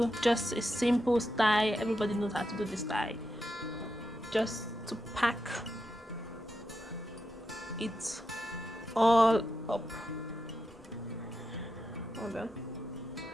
just a simple style. Everybody knows how to do this style. Just to pack it all up. Hold on.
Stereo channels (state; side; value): normal; both; correlation 0.86